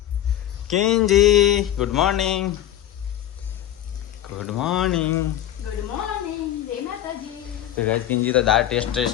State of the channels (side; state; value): right; quieter; 12.0 dB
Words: કિંજી good morning good morning good morning જય માતાજી. તો ગાઈસ કિંજી તો દાળ